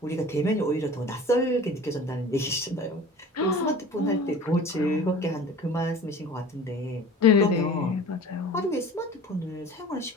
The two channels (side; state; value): both; normal; correlation 0.41